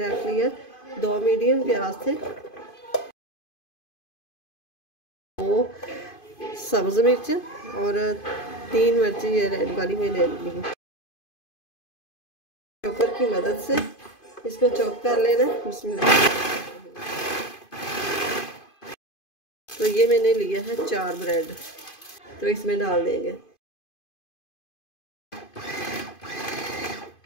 रख लिया, 2 मीडियम प्याज थे, 2 सब्ज़ मिर्च और 3 मिर्ची ये रेड वाली मैंने ली। चॉपर की मदद से इसको चॉप कर लेना। बिस्मिल्लाह। तो ये मैंने लिया है 4 ब्रेड, तो इसमें डाल देंगे।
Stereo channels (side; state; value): right; late; 2.5 ms